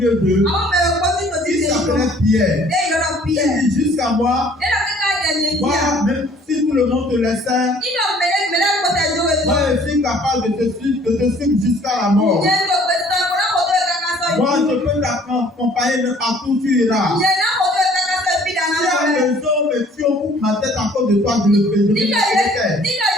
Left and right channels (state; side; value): normal; both; correlation 0.56